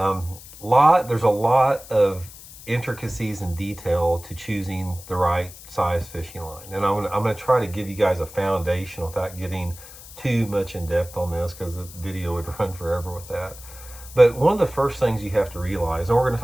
a lot of intricacies and detail to choosing the right size fishing line. And I'm gonna try to give you guys a foundation without getting too much in depth on this, because the video would run forever with that. But one of the first things you have to realize, and we're going to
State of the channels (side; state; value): left; noise; hiss, 17 dB below the sound